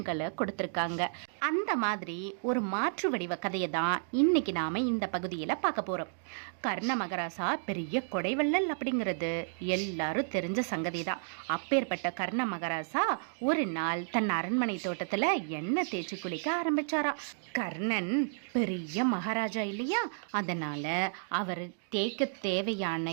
கொடுத்துருக்காங்க. அந்த மாதிரி ஒரு மாற்று வடிவ கதையை தான் இன்னைக்கு நாம இந்த பகுதியில் பார்க்க போறோம். கர்ண மகாராசா பெரிய கொடைவள்ளல் அப்படிங்கிறது எல்லாரும் தெரிஞ்ச சங்கதி தான். அப்பேற்பட்ட கர்ண மகாராசா ஒரு நாள் தன் அரண்மனை தோட்டத்துல எண்ணெய் தேய்ச்சி குளிக்க ஆரம்பிச்சாரா. கர்ணன் பெரிய மகாராஜா இல்லையா, அதனால அவர் தேய்க்க தேவையான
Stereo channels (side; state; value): left; silent; digital silence